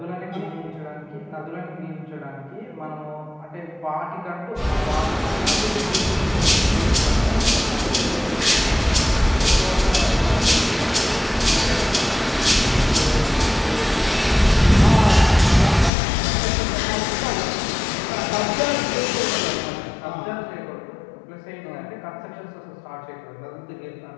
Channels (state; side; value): drops out; right; at 15.9 s